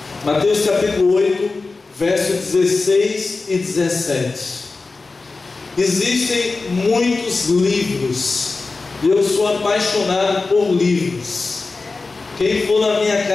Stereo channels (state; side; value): quieter; right; 3.8 dB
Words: Mateus capítulo 8, versos 16 e 17. Existem muitos livros, e eu sou apaixonado por livros. Quem for na minha